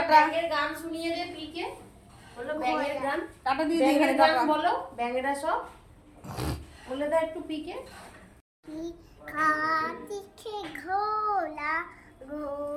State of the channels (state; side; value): identical; both; correlation 1.00